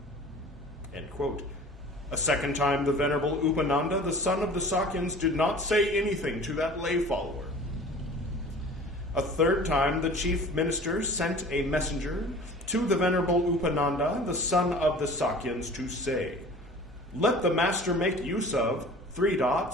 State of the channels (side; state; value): both; normal; correlation 0.43